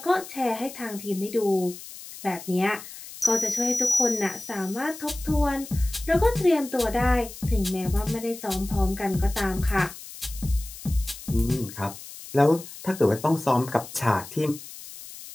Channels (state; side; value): noise; left; hiss, 14 dB below the sound